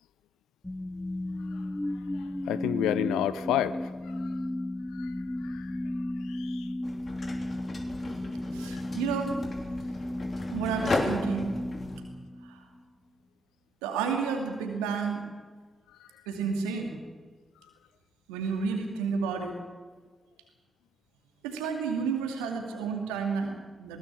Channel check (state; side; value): normal; both; correlation 0.68